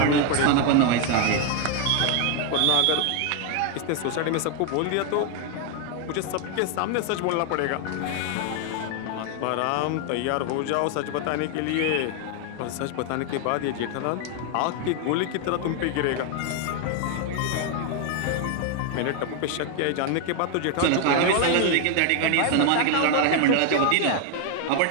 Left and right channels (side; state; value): both; different; correlation 0.00